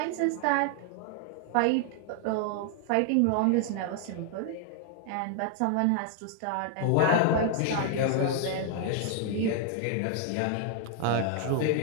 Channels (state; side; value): different; both; correlation 0.00